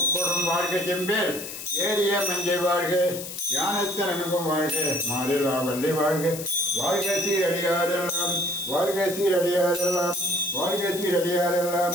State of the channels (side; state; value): left; noise; hiss, 9 dB below the sound